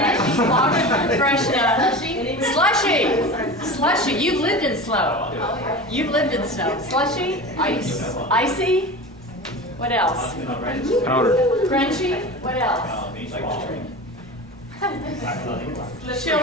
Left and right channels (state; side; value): normal; both; correlation 0.31